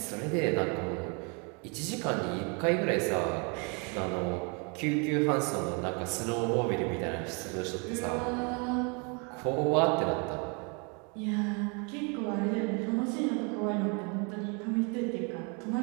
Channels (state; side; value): quieter; left; 34.3 dB